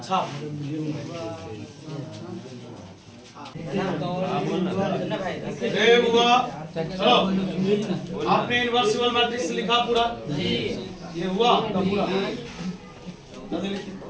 छाप, चलो आपने इनवर्सिबल मैट्रिक्स लिखा पूरा, ये हुआ का पूरा,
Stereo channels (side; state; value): both; identical; correlation 1.00